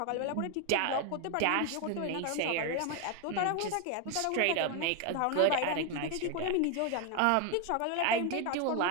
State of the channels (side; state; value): both; different; correlation 0.01